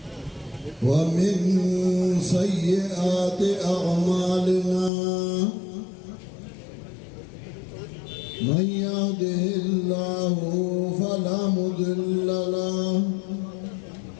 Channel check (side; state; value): right; drops out; at 4.9 s